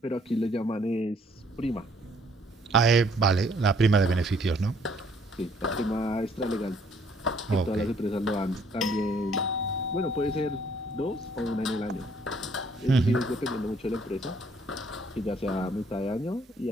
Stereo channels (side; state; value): both; normal; correlation 0.64